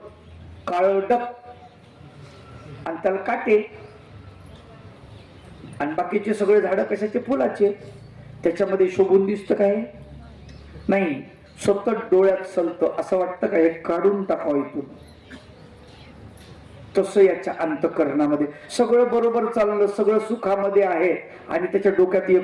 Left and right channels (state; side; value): identical; both; correlation 1.00